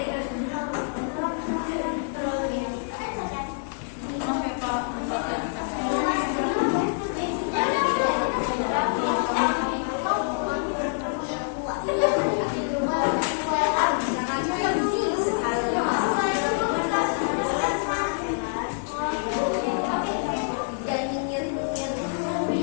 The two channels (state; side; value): silent; right; 56 dB below the other